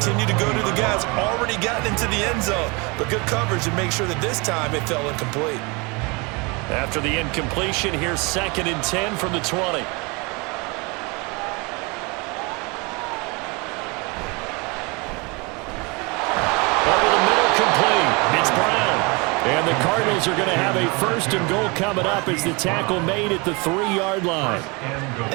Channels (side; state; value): left; quieter; 28.3 dB